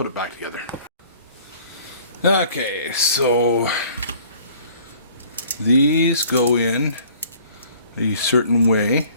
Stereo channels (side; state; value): both; inverted; correlation -0.53